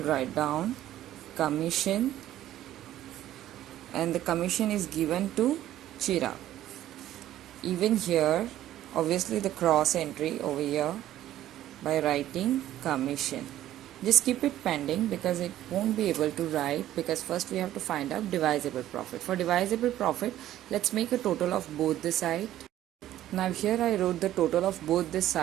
write down commission, and the commission is given to Chirag. Even here obviously the cross entry over here by writing commission. Just keep it pending because it won't be able to write, because first we have to find out divisible profit. For divisible profit, let's make a total of both the side. Now here I wrote the total of both the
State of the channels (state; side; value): quieter; left; 13.1 dB